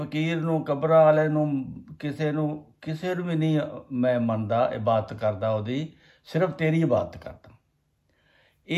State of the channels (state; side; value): identical; both; correlation 1.00